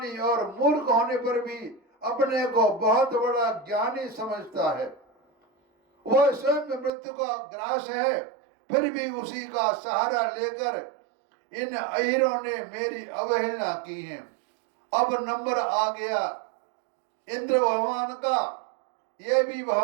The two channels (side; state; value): left; drops out; at 6.9 s